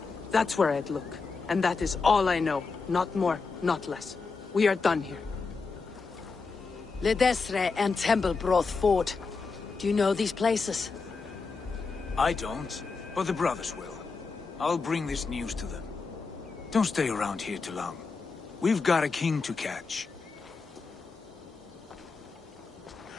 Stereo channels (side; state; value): right; quieter; 4.5 dB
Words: that's where I'd look. And that is all I know. Not more, not less. We are done here. Ledestre and Templebroth Fort. Do you know these places? I don't, but the brothers will. I'll bring this news to them. Don't stay around here too long. We've got a king to catch.